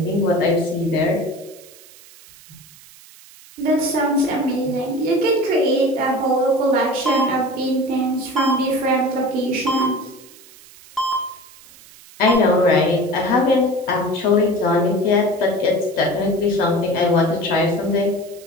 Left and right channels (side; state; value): right; noise; hiss, 22 dB below the sound